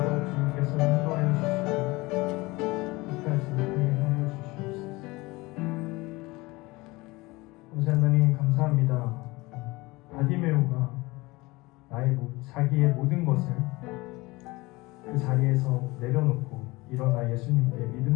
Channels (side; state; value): right; quieter; 22.2 dB